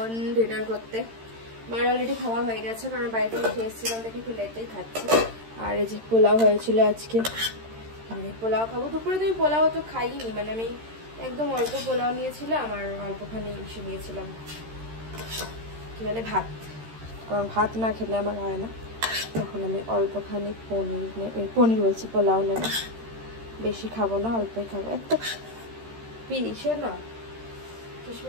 ডিনার করতে। মার অলরেডি খাওয়া হয়ে গেছে, কারণ বাড়িতে খেয়ে এসেছিলাম দেখে একটু লেটেই খাচ্ছি। আর এই যে পোলাও হয়েছিল আজকে, আমি পোলাও খাবো। দুপুরে তো আমি পোলাও তো খাইনি, মানে আমি একদম অল্প পোলাও নিয়েছিলাম আর অল্পখানি ইসে নিয়েছিলাম, কি বলে ভাত, কারণ ভাত না খেলে আমার হয় না। তখন আমি অল্পখানি পনির বলছি পোলাও নেব, বেশি খাবো না, অল্পই খাবো। একটা পিসে না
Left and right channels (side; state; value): left; late; 13 ms